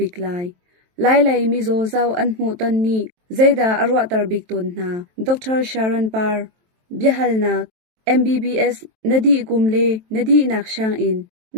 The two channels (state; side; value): late; left; 23 ms